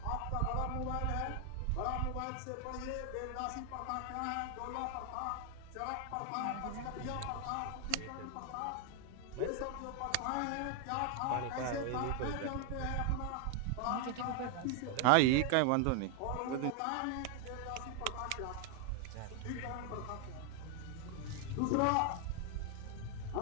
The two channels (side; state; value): both; different; correlation 0.00